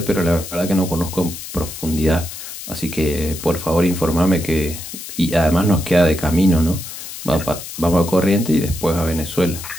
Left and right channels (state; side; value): noise; left; hiss, 11 dB below the sound